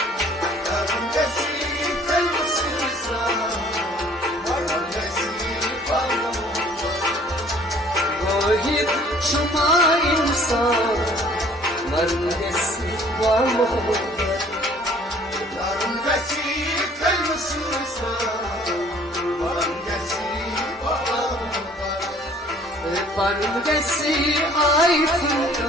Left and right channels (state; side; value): normal; both; correlation 0.55